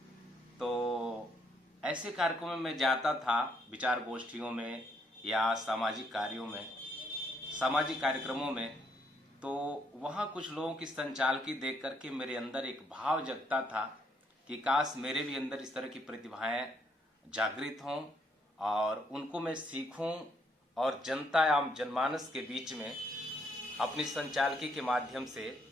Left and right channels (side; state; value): both; normal; correlation 0.72